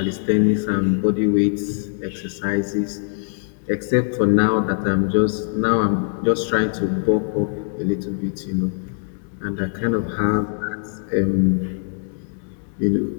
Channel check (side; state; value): right; silent; 56 dB below the other